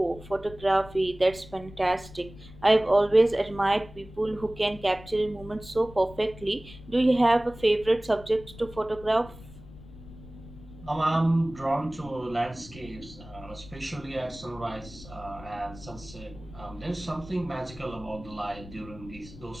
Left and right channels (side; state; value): left; noise; rumble, 17 dB below the sound